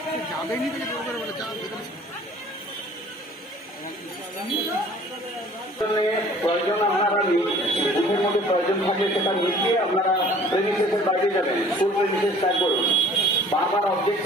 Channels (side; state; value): both; normal; correlation 0.51